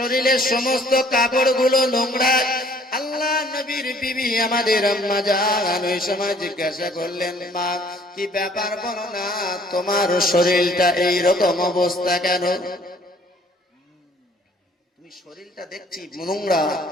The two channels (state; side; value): normal; both; correlation 0.58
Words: সমস্ত কাপড়গুলো নোংরা। আল্লাহ নবীর বিবি আমাদের আম্মা জান ওই সময় জিজ্ঞাসা করলেন, মা কি ব্যাপার বলো না, তোমার শরীরটা এই রকম অবস্থা কেন? তুমি শরীরটা দেখছি নোংরা,